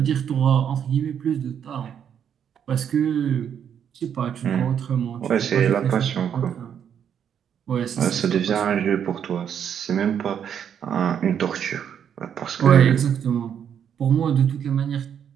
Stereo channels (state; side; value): quieter; left; 8.5 dB